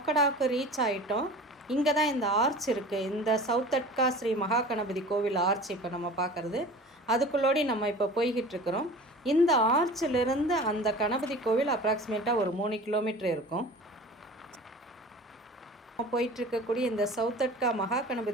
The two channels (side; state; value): both; normal; correlation 0.39